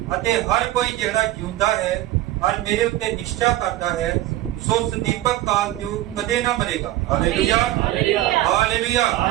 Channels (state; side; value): quieter; left; 15.3 dB